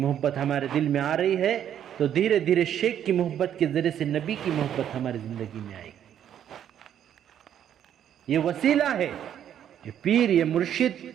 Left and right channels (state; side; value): quieter; left; 9.9 dB